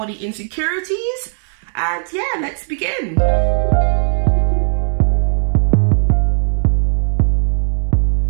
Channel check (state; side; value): silent; left; digital silence